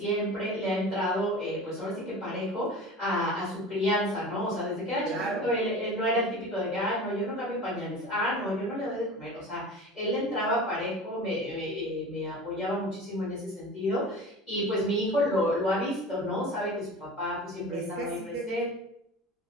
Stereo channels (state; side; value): normal; both; correlation 0.35